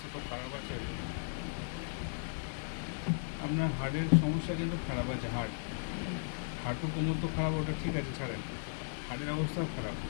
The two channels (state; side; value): silent; right; digital silence